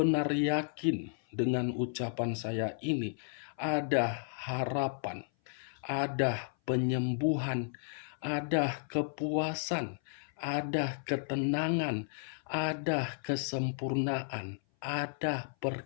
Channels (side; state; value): right; silent; 55 dB below the other